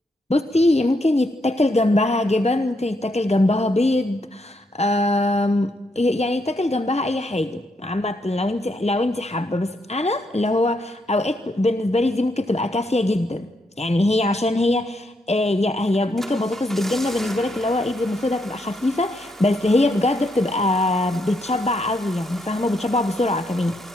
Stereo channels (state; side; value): normal; both; correlation 0.77